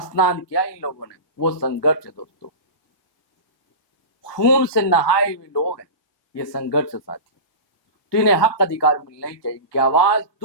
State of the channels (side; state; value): right; late; 1.2 ms